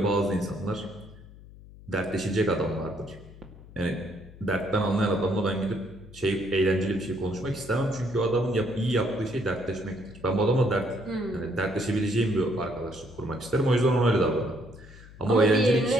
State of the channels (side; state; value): left; noise; hum, 19 dB below the sound